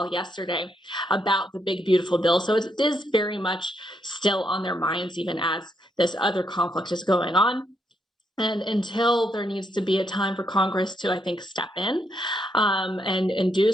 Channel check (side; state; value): both; normal; correlation 0.77